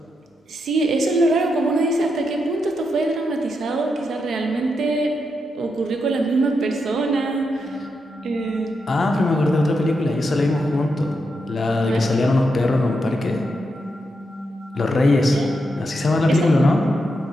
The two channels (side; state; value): both; normal; correlation 0.84